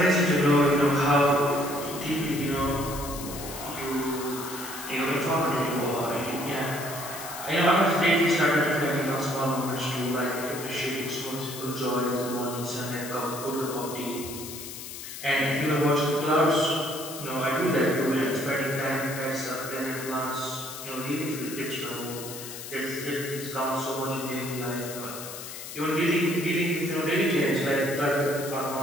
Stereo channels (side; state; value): left; noise; hiss, 10 dB below the sound